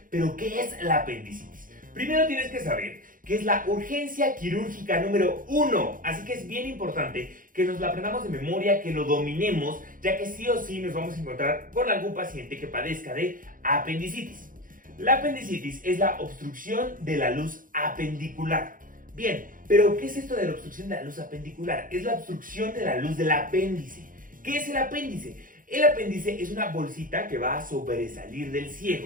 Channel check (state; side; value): late; left; 0.40 ms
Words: Pero ¿qué es la apendicitis? Primero tienes que saber que es la urgencia quirúrgica número 1, así que es bien importante que nos la aprendamos de memoria, que lo dominemos, ya que sí o sí nos vamos a encontrar con algún paciente que padezca de apendicitis. La apendicitis es la obstrucción de la luz apendicular. Bien, pero ¿qué es esto de la obstrucción de la luz apendicular? Es la obstrucción de la luz del apéndice. ¿Qué es el apéndice? El apéndice es una bolsita que va a sobresalir del